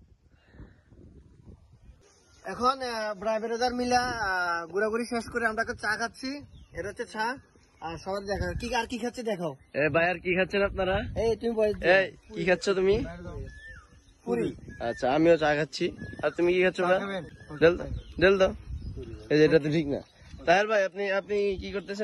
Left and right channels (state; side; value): identical; both; correlation 1.00